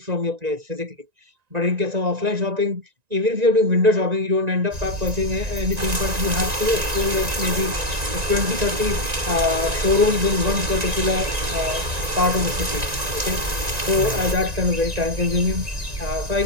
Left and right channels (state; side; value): late; left; 1.9 ms